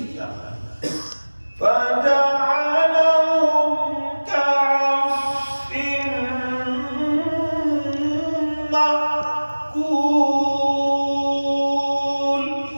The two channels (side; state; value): both; inverted; correlation -1.00